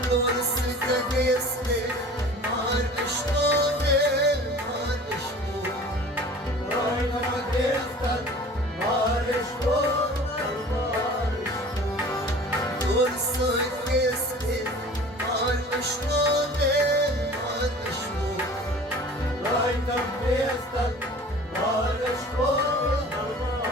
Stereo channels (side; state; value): both; normal; correlation 0.43